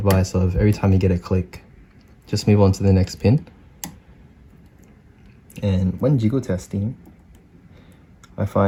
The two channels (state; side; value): identical; both; correlation 1.00